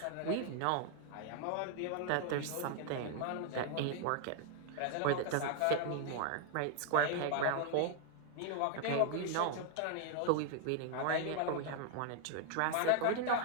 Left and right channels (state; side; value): different; both; correlation 0.00